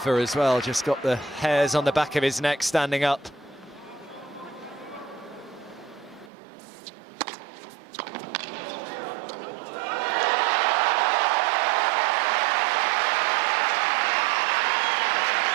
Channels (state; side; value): drops out; left; at 6.3 s